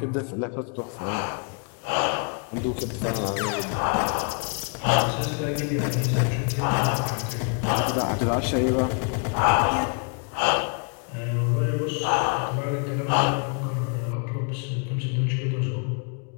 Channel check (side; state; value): right; quieter; 39.4 dB